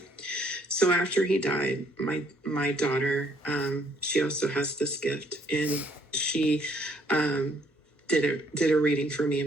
So after he died, my daughter, she also has this gift, and she did a reading for me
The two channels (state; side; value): normal; both; correlation 0.66